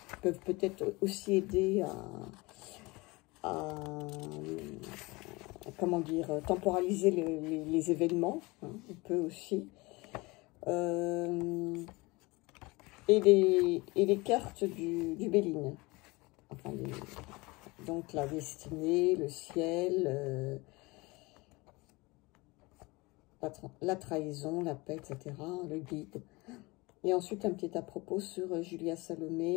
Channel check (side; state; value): right; quieter; 23.9 dB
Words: qui peuvent peut-être aussi aider à comment dire, temporaliser les événements. Hein, on peut aussi. Et les cartes du Béline. Enfin, donc, la destinée, le ciel... la trahison, la paix, etc., le guide. Et ensuite, un petit à propos sur Julia